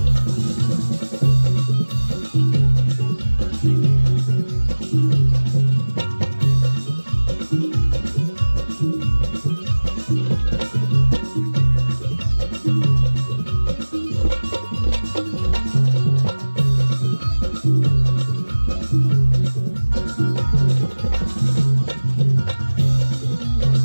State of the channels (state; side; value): inverted; both; correlation -1.00